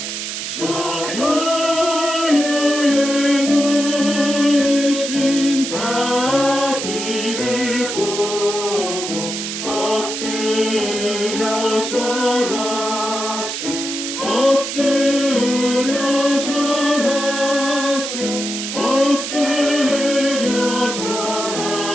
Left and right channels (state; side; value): noise; right; hiss, 5 dB below the sound